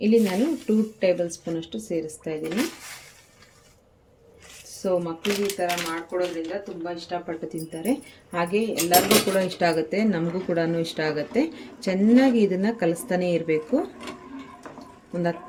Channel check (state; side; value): identical; both; correlation 1.00